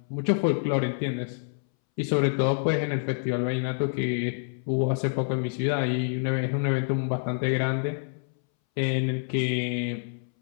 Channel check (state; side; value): silent; right; 60 dB below the other